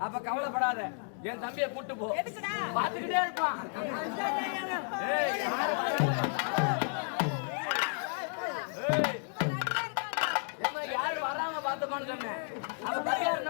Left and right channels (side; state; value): right; silent; 56 dB below the other